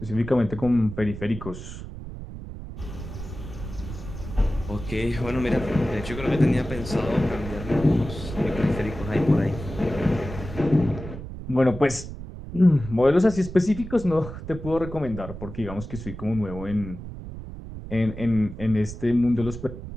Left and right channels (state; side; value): noise; right; rumble, 10 dB below the sound